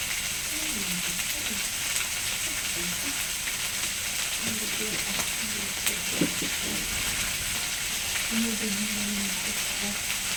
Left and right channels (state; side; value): identical; both; correlation 1.00